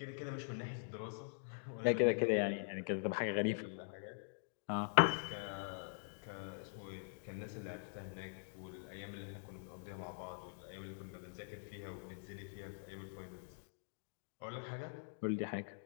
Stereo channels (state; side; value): silent; right; digital silence